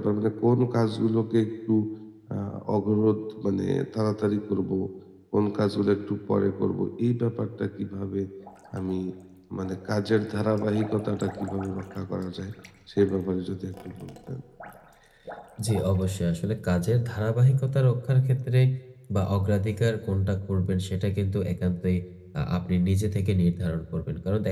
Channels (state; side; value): identical; both; correlation 1.00